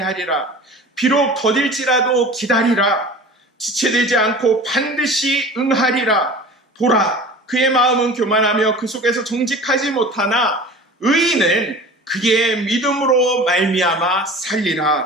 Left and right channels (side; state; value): both; normal; correlation 0.39